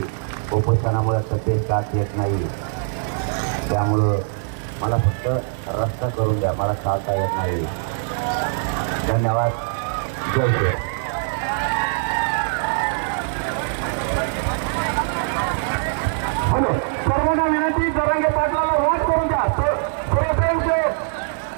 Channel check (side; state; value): left; silent; 64 dB below the other